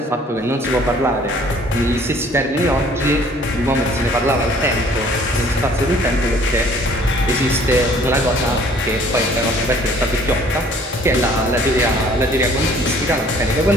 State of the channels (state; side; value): normal; both; correlation 0.55